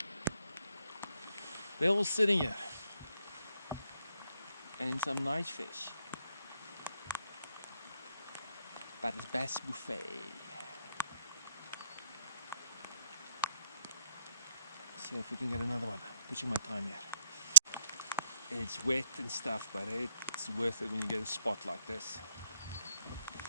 They're all sitting here. And some nice fish. But it's bass buffet. See if we can get another one. Pushing my time here. It's wet and stuff, but it's worth it when you get a spot like this.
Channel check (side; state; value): both; inverted; correlation -0.76